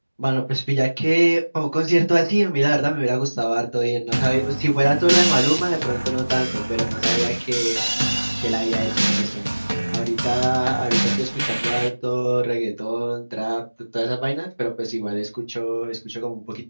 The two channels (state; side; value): inverted; both; correlation -1.00